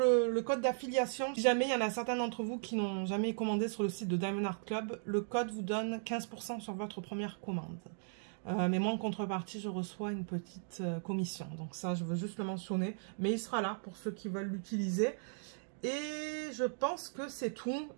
code d'affiliation. Si jamais il y en a certains d'entre vous qui n'ont jamais commandé sur le site de Diamond Art Club, le code vous donne 15% sur votre première commande. Mais moi, en contrepartie, je reçois une petite commission. Donc ça, je veux juste le mentionner. Mais il sera là pour ceux qui veulent l'utiliser. Et je pense que c'est tout.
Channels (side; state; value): left; silent; digital silence